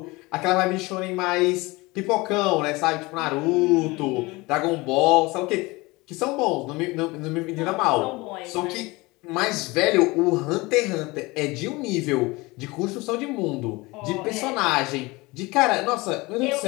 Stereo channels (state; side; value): quieter; right; 23.0 dB